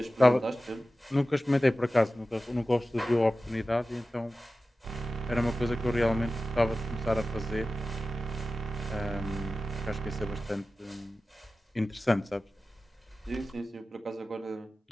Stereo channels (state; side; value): normal; both; correlation 0.95